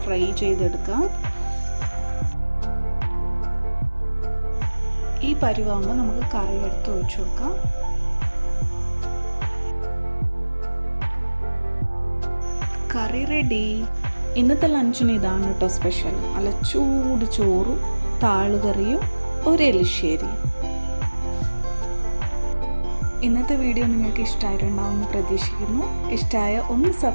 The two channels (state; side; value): inverted; both; correlation -1.00